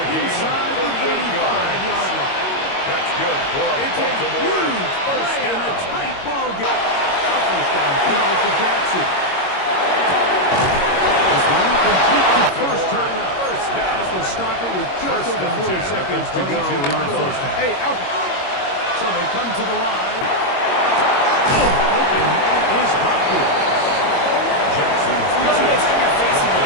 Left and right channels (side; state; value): right; late; 22 ms